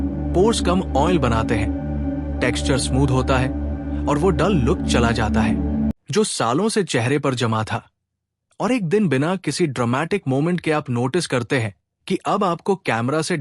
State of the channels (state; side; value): identical; both; correlation 1.00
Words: पोर्स कम ऑयल बनाते हैं, टेक्सचर स्मूथ होता है और वो डल लुक चला जाता है जो सालों से चेहरे पर जमा था। और एक दिन बिना किसी ड्रामेटिक मोमेंट के आप नोटिस करते हैं कि अब आपको कैमरा से